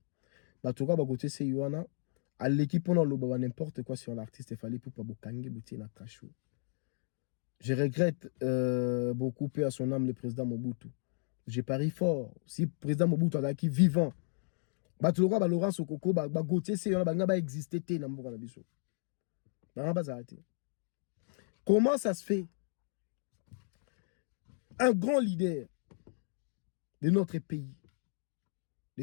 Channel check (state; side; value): silent; right; digital silence